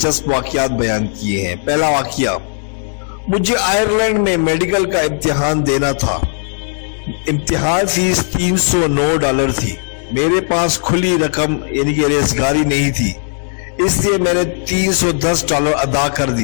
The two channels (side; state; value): right; silent; digital silence